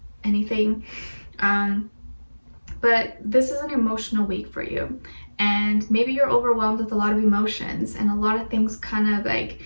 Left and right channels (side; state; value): both; inverted; correlation -1.00